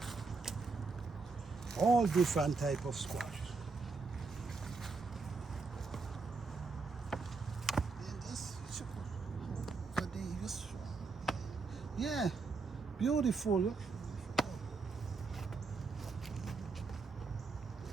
All different type of squash. Yeah, beautiful.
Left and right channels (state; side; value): quieter; left; 4.3 dB